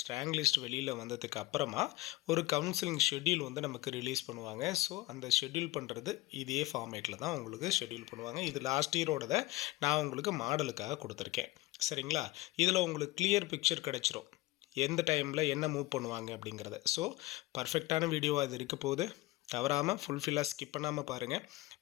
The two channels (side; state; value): right; quieter; 19.6 dB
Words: லிஸ்ட் வெளியில் வந்ததுக்கு அப்புறமா ஒரு கவுன்சிலிங் ஷெட்யூல் வந்து நமக்கு ரிலீஸ் பண்ணுவாங்க. ஸோ அந்த ஷெட்யூல் பண்ணுறது இதே ஃபார்மேட்டில் தான் உங்களுக்கு ஷெட்யூல் பண்ணுவாங்க. இது லாஸ்ட் இயரோடதை நான் உங்களுக்கு மாடலுக்காக கொடுத்துருக்கேன். சரிங்களா, இதில் உங்களுக்கு கிளியர் பிக்சர் கிடச்சிரும் எந்த டைமில் என்ன மூவ் பண்ணுவாங்க அப்படிங்கிறத. ஸோ பர்ஃபெக்டான வீடியோவாக இது இருக்க போகுது. தவறாமல் ஃபுல்ஃபில்லாக ஸ்கிப் பண்ணாமல் பாருங்கள்.